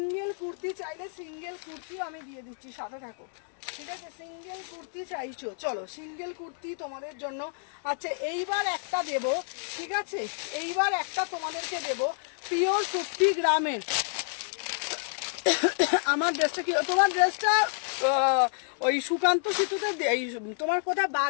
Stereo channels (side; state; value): right; silent; 58 dB below the other